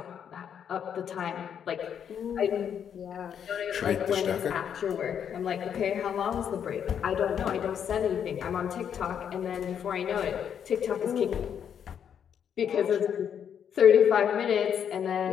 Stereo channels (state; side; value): quieter; right; 8.4 dB